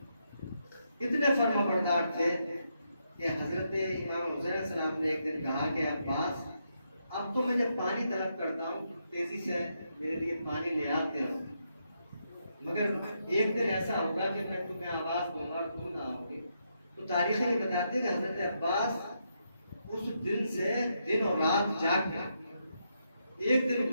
کتنے فرما بردار تھے کہ حضرت امام حسین علیہ السلام نے ایک دن کہا کہ عباس اب تو میں جب پانی طلب کرتا ہوں تیزی سے میرے لیے پانی لے آتے ہو، مگر ایک دن ایسا ہوگا کہ میں تمہیں آواز دوں گا اور تم نہ آؤ گے. تو تاریخ یہ بتاتے ہیں کہ حضرت عباس اس دن سے دن اور رات جاگ گئے. ایک دن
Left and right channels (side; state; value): both; inverted; correlation -0.80